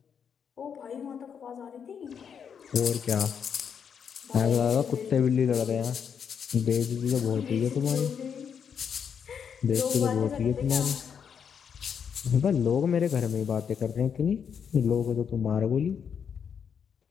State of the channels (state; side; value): quieter; right; 7.3 dB